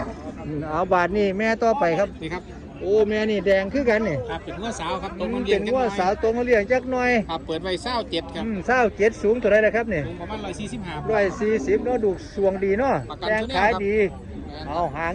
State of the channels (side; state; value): both; identical; correlation 1.00